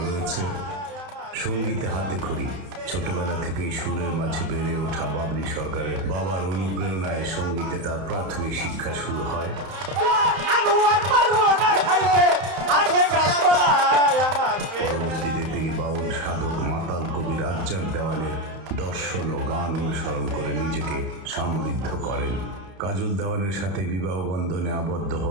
রয়েছে। সঙ্গীতে হাতে খড়ি। ছোটবেলা থেকেই সুরের মাঝে বেড়ে ওঠা বাবলি সরকারের বাবার অনুপ্রেরণায় সঙ্গীতে তার প্রাথমিক শিক্ষা শুরু হয়। তিনি বাউল সাধক মাতাল কবি রাজ্জাক দেওয়ানের দর্শন ও গান অনুসরণ করে নিজেকে সমৃদ্ধ করেন। কাজল দেওয়ানের সাথে বিবাহ বন্ধনে আবদ্ধ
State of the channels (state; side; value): late; left; 31 ms